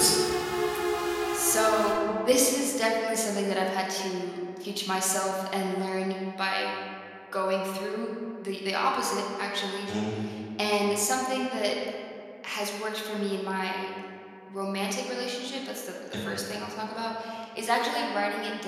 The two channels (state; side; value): identical; both; correlation 1.00